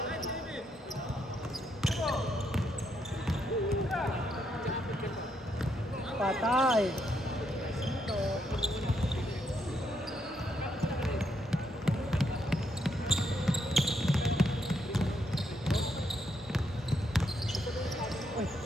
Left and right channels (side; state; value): both; normal; correlation 0.77